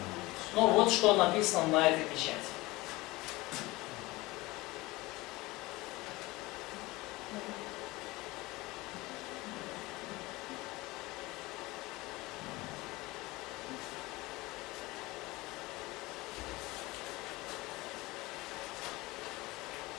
Ну вот что написано на этой печати.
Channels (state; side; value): quieter; right; 21.0 dB